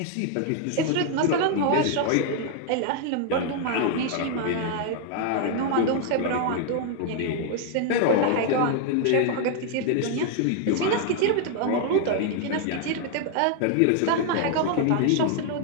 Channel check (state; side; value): different; both; correlation 0.00